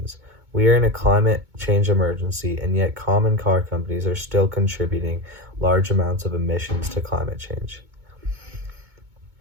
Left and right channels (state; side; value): late; left; 2.2 ms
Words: We are in a climate change emergency, and yet common car companies are still contributing large amounts of emissions to climate change.